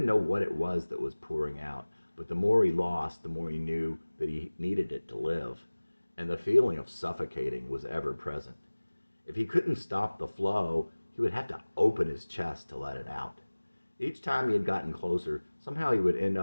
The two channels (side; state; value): both; inverted; correlation -1.00